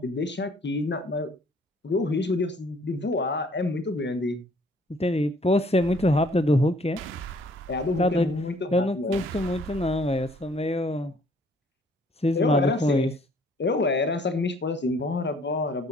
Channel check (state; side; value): normal; both; correlation 0.60